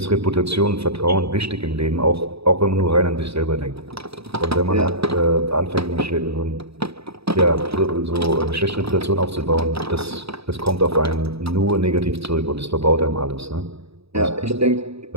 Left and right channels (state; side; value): late; left; 0.77 ms